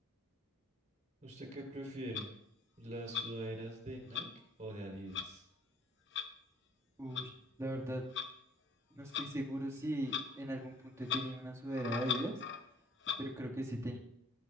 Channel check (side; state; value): both; normal; correlation 0.59